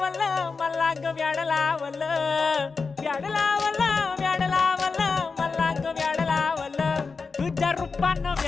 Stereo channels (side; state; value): right; quieter; 4.7 dB